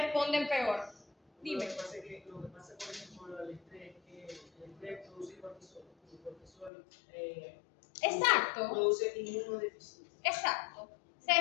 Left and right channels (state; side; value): drops out; right; at 6.7 s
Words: peor. Dime. Lo que pasa, por ejemplo, con el estrés, que el estrés produce cortisol. El cortisol Exacto. produce inmunodeficiencia. Exacto. Se